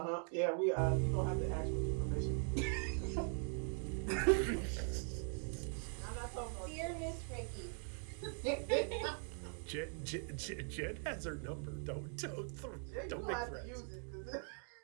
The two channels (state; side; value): silent; left; 50 dB below the other